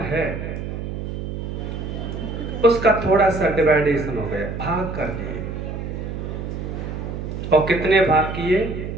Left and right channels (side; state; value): right; noise; hum, 6 dB below the sound